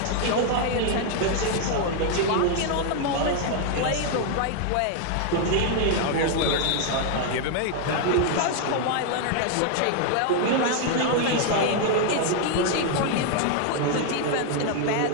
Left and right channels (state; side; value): different; both; correlation 0.00